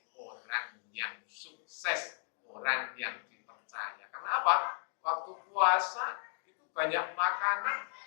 orang yang sukses, orang yang dipercaya. Karena apa? Waktu puasa itu banyak makanan,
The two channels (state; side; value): silent; right; digital silence